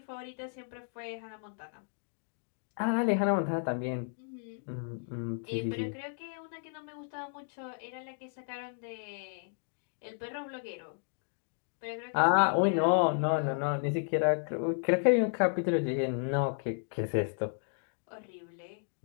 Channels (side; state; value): right; silent; digital silence